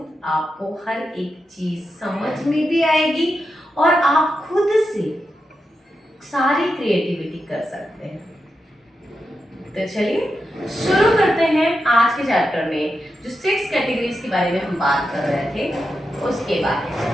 आपको हर एक चीज समझ में भी आएगी और आप खुद से सारी क्रिएटिविटी कर सकते हैं। तो चलिए शुरू करते हैं आज के चैप्टर में, जो 6 कैटेगरीज के बारे में हम बात कर रहे थे उसके बारे में,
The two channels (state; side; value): normal; both; correlation 0.88